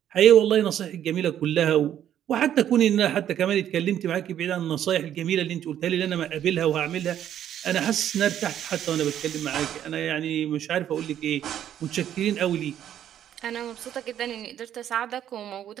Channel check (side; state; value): left; quieter; 10.6 dB